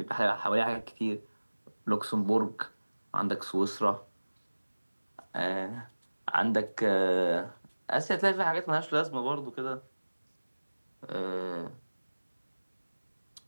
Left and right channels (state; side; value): inverted; both; correlation -1.00